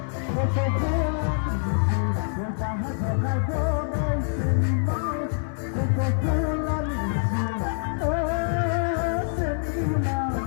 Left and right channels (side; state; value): right; silent; 61 dB below the other